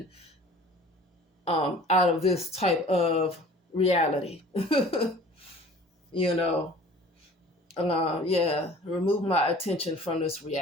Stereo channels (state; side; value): normal; both; correlation 0.47